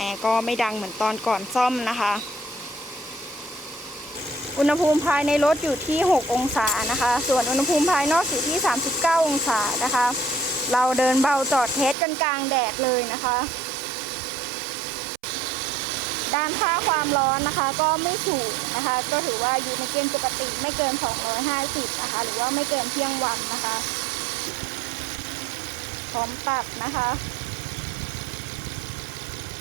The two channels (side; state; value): left; drops out; at 12.0 s